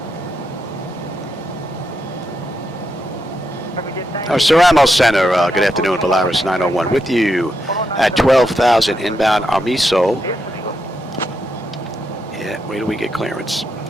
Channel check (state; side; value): normal; both; correlation 0.83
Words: Ceramo Center, good afternoon, Volaris 901 with you at 12,000 inbound Amiso. Yeah, wait till we get clearance.